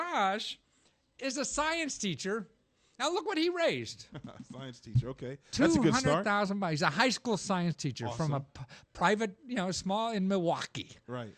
is a science teacher. Now, look what he raised. Science teacher, okay. That's a good start. $200,000. He's a high school science teacher from a private, small in Milwaukee. Right.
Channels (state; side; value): identical; both; correlation 1.00